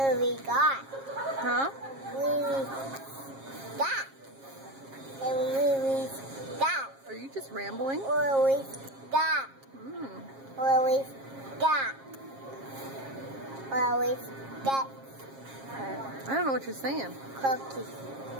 we got? Huh? Where we got? And where we got? Are you just rambling? Where we got? Where we got? Where we got? I don't know what you're saying. Cookies.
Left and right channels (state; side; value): late; left; 7.4 ms